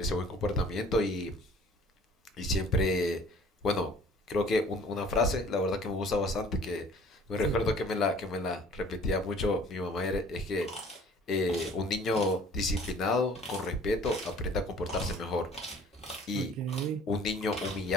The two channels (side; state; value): both; normal; correlation 0.52